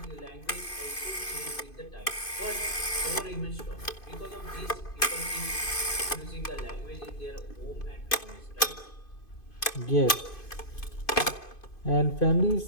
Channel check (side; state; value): right; late; 2.5 ms